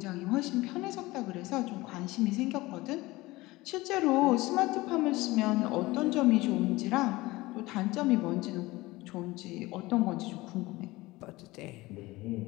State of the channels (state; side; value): quieter; right; 20.1 dB